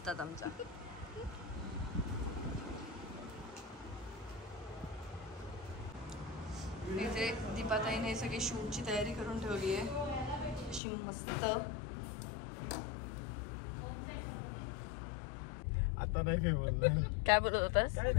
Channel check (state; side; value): drops out; right; at 10.8 s